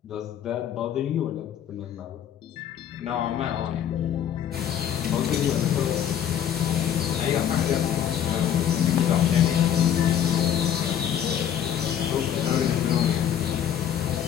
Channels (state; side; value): quieter; right; 9.6 dB